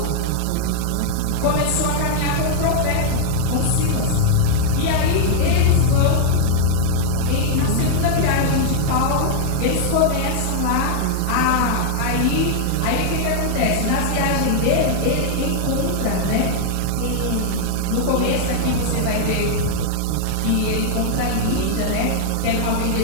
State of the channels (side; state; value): both; different; correlation 0.00